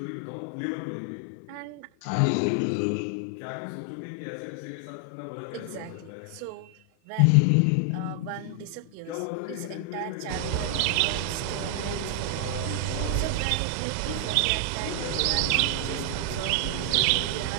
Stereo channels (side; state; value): both; different; correlation 0.00